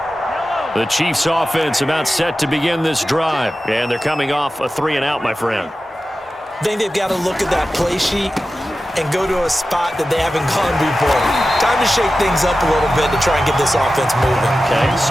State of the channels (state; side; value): normal; both; correlation 0.94